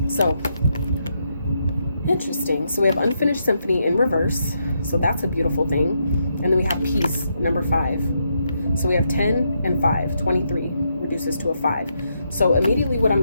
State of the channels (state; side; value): inverted; both; correlation -0.80